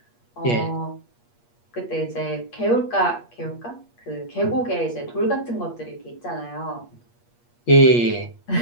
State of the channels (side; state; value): right; late; 8.4 ms